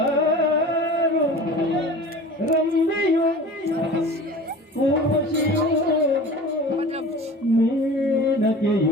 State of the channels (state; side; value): normal; both; correlation 0.39